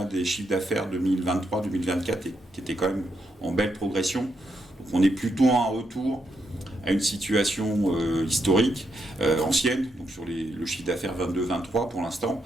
des chiffres d'affaires 2023-2024 qui étaient quand même en belle progression. Donc on est plutôt en retour à une situation historique, ancienne, donc sur le chiffre d'affaires 22-23 pour l'instant.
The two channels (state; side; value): normal; both; correlation 0.80